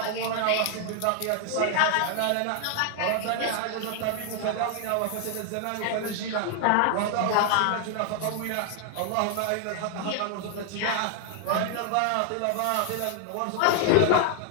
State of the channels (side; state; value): both; different; correlation 0.00